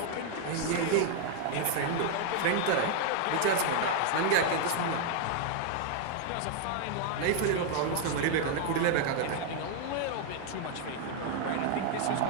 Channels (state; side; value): different; both; correlation 0.00